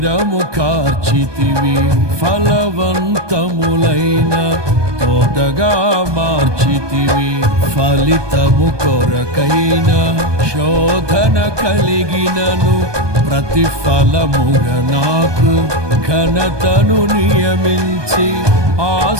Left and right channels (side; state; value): left; late; 1.2 ms